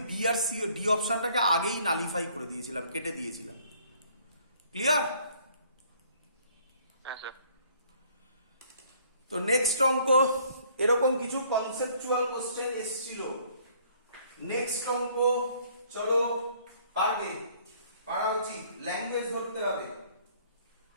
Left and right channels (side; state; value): both; inverted; correlation -0.60